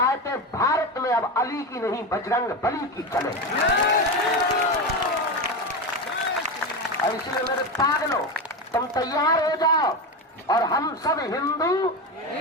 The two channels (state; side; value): normal; both; correlation 0.18